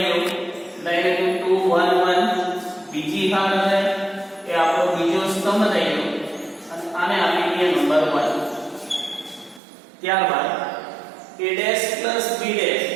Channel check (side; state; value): left; drops out; at 9.6 s